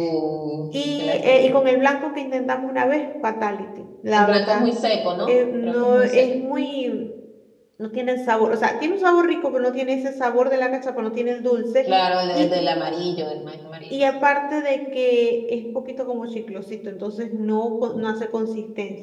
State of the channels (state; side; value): identical; both; correlation 1.00